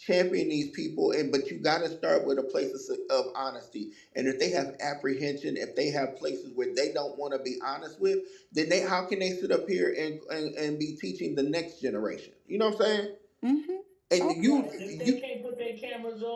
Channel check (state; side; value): identical; both; correlation 1.00